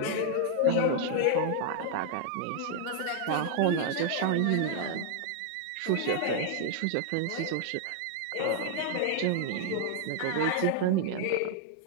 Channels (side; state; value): both; different; correlation 0.00